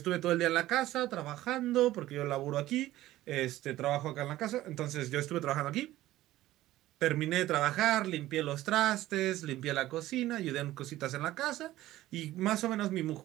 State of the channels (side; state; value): left; quieter; 15.5 dB